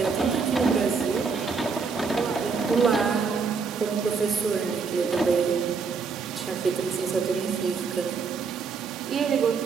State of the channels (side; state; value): left; quieter; 5.2 dB